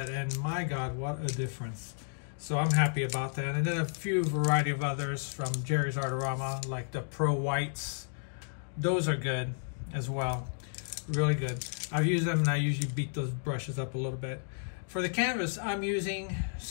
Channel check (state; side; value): silent; right; digital silence